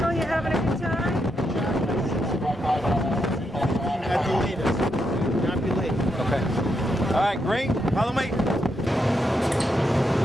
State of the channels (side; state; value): both; normal; correlation 0.82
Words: you having a good time? At the latest. Not be late. Okay. All right, great. Follow me.